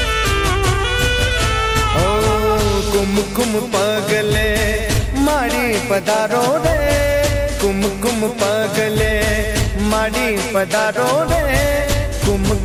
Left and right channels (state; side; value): identical; both; correlation 1.00